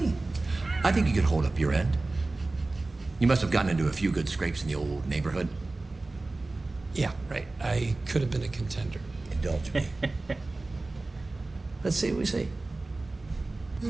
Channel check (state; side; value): quieter; left; 3.2 dB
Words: I think you could hold up your end. You must have gotten into a few good scrapes in the old neighborhood. Yeah, right. I could have been a contender. Indulge me. Let's see what we see.